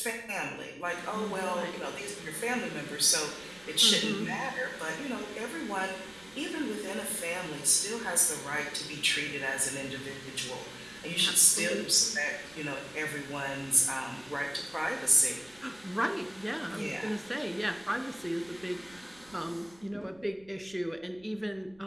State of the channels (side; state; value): right; noise; rumble, 27 dB below the sound